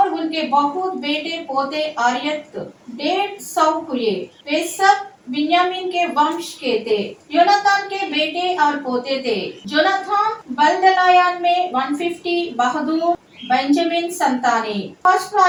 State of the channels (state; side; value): identical; both; correlation 1.00